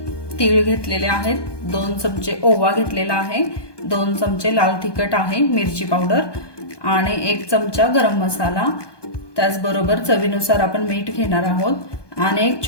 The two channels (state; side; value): late; right; 1.2 ms